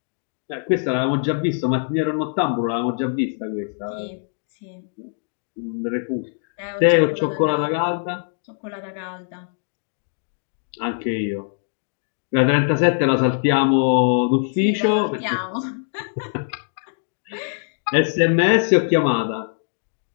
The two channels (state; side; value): silent; right; digital silence